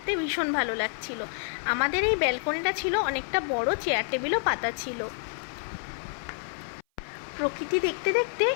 ভীষণ ভালো লাগছিল। আমাদের এই ব্যালকনিটা ছিল অনেকটা বড়, চেয়ার টেবিলও পাতা ছিল। প্রকৃতি দেখতে দেখতে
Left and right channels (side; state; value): right; silent; 55 dB below the other